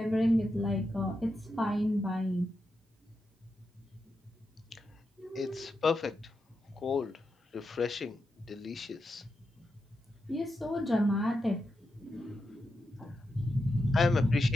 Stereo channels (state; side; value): normal; both; correlation 0.87